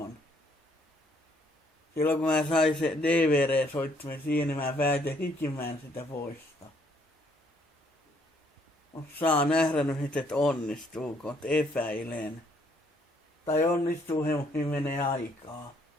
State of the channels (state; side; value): normal; both; correlation 0.67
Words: Silloin kun mä sain se DVD-soittimen siihen, niin mä päätin hikimään sitä poistaa. Saa nähdä nyt, että onnistuuko, että epäilen. Tai onnistuu he, mutta menee aikaa.